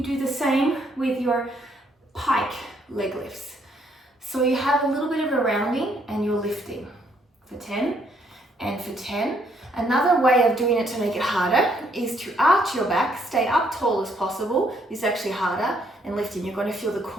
do the same with your pike leg lifts. So you have a little bit of a rounding and you're lifting for 10 and for 10. Another way of doing it to make it harder is to arch your back, stay up tall as possible. This is actually harder, and lifting. You're going to feel the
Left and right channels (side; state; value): both; normal; correlation 0.69